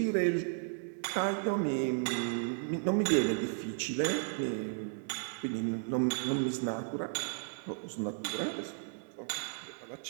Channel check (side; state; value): left; silent; 55 dB below the other